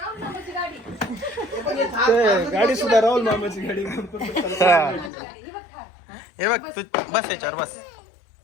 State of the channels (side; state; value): right; drops out; at 5.1 s